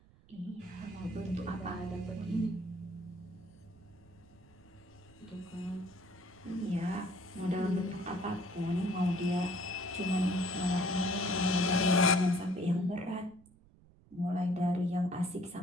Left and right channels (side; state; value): right; noise; rumble, 26 dB below the sound